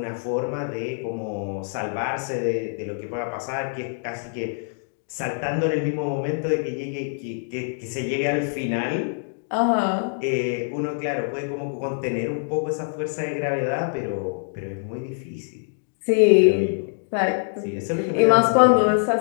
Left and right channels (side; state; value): right; silent; digital silence